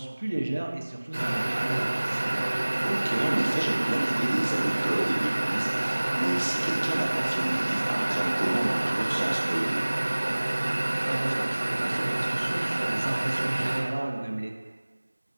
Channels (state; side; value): inverted; both; correlation -1.00